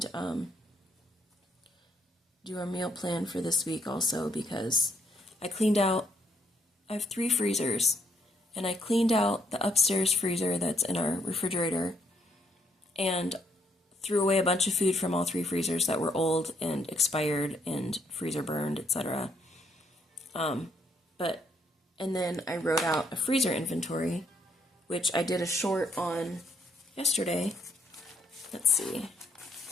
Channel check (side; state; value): both; normal; correlation 0.71